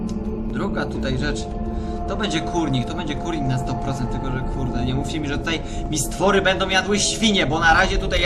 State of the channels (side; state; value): both; identical; correlation 1.00